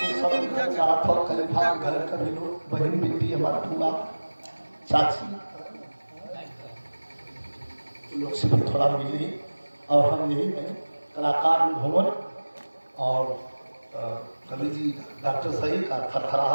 सब खलीफा घर का भी लोग, बहन बेटी हमारा पूरा चाची लोग से भी थोड़ा मिली। और हम यही हैं कलाकार भवन और कवि जी डॉक्टर सही का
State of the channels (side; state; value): both; inverted; correlation -1.00